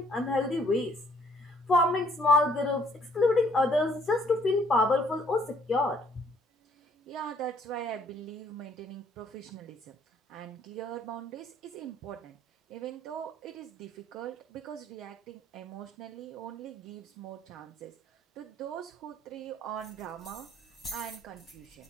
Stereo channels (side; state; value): both; normal; correlation 0.63